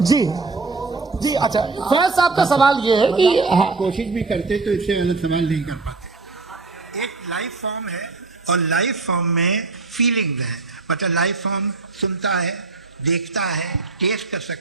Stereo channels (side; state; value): left; quieter; 3.8 dB